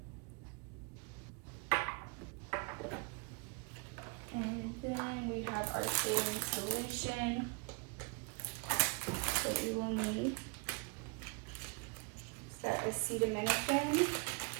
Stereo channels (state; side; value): quieter; left; 33.3 dB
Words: And then we have our saline solution that you will need. It's that acetaminophen.